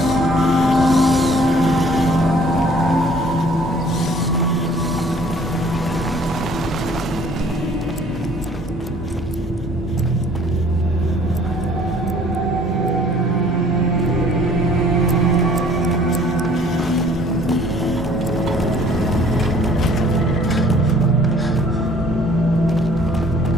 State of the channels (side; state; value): both; normal; correlation 0.55